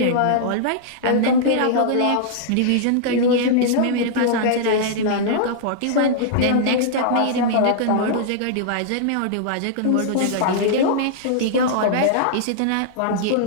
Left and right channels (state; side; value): different; both; correlation -0.01